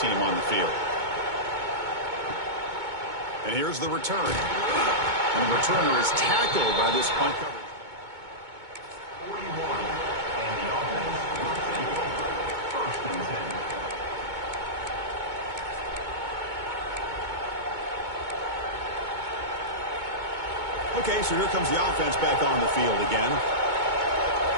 on the field. And here's the return. And the returner is tackled by this punt coverage. 41. And the offense will take over. First and 10. Okay, so here comes the offense back on the field again.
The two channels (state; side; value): late; left; 2.2 ms